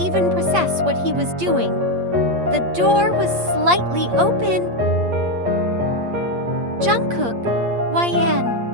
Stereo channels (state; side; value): late; left; 8.5 ms